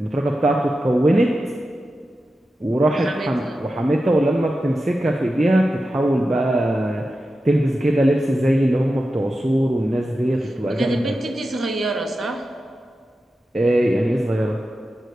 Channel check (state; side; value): normal; both; correlation 0.92